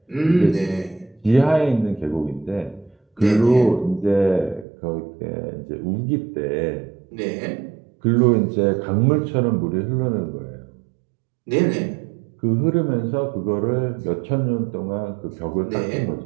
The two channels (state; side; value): drops out; left; at 4.7 s